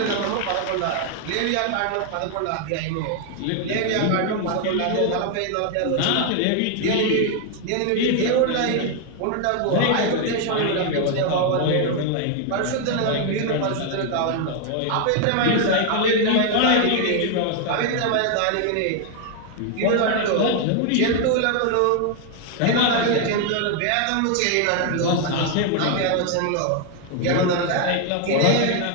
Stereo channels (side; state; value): both; different; correlation 0.00